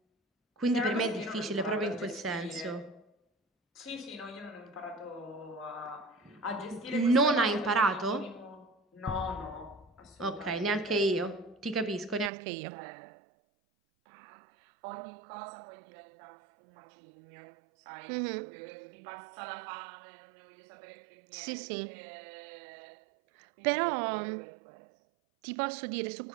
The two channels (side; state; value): left; drops out; at 12.3 s